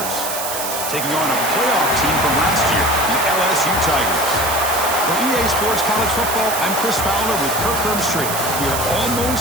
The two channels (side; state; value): right; noise; hiss, 5 dB below the sound